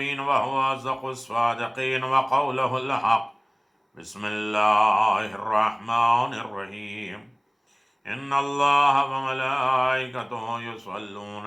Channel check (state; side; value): identical; both; correlation 1.00